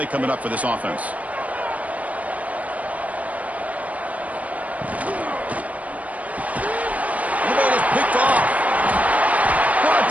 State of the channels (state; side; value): late; left; 0.069 ms